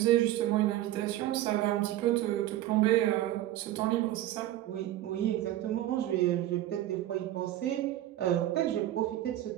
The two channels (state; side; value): quieter; left; 14.0 dB